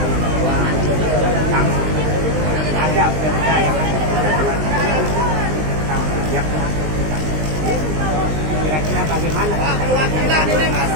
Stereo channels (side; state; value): left; late; 19 ms